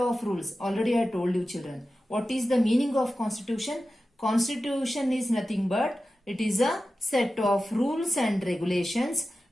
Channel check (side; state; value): both; normal; correlation 0.93